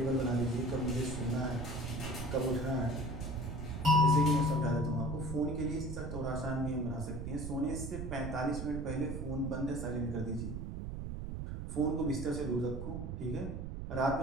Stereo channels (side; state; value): right; noise; rumble, 5 dB below the sound